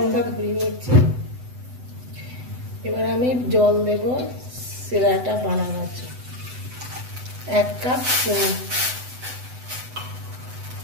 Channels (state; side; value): late; left; 8.0 ms